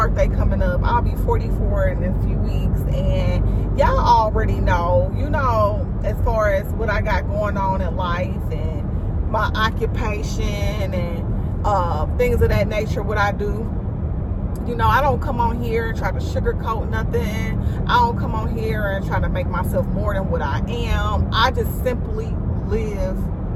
coming up. I'll be 44 in a few weeks, and y'all already know, you know, as far as what I got going on in life and my occupation and things of that nature, what I do. You know, I don't come on here and try to sugarcoat nothing. I don't come on here and try to make myself more than what I am. I just simply live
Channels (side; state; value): both; identical; correlation 1.00